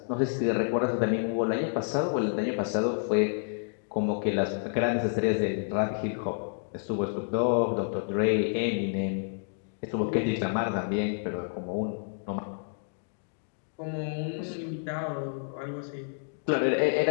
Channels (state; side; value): silent; right; digital silence